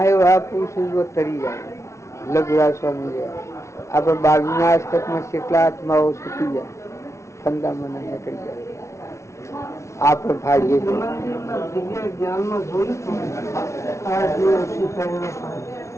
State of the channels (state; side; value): late; right; 0.14 ms